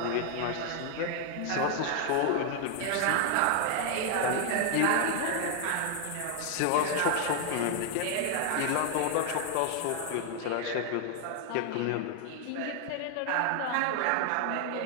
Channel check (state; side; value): different; both; correlation 0.00